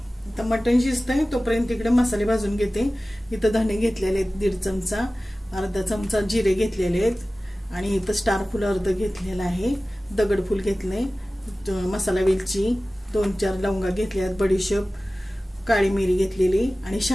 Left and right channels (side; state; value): both; normal; correlation 0.97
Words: आता मटण शिजतंय तोपर्यंत इकडे मसाले भाजून घेते. इथं धणे घेतलेले आहेत 1.5 चमचा, अर्धा चमचा जिरे घेतलेले आहेत आणि इथं स्टार फुल अर्ध घेतलेलं आहे, दगडफूल घेतले, मसाला वेलची 2-4 लवंगा घेतल्या आहेत, बडीशेप, काळी मिरी घेतलेली आणि